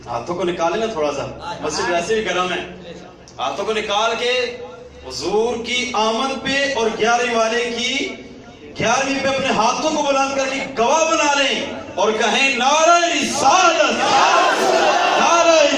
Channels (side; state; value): both; identical; correlation 1.00